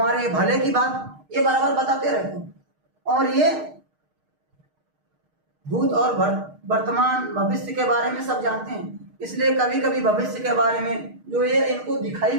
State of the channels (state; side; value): late; left; 6.5 ms